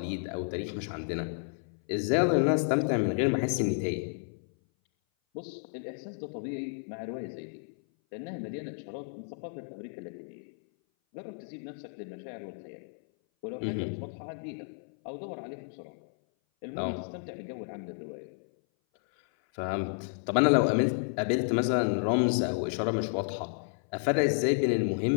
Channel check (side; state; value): right; silent; 57 dB below the other